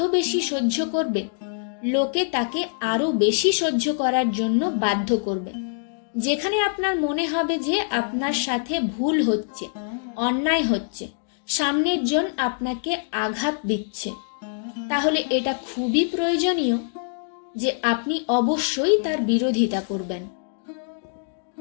বেশি সহ্য করবে, লোকে তাকে আরো বেশি সহ্য করার জন্য বাধ্য করবে। যেখানে আপনার মনে হবে যে আপনার সাথে ভুল হচ্ছে, অন্যায় হচ্ছে, সামনের জন আপনাকে আঘাত দিচ্ছে, তাহলে এটা খুবই প্রয়োজনীয় যে আপনি অবশ্যই তার বিরোধিতা করবেন।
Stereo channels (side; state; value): right; silent; digital silence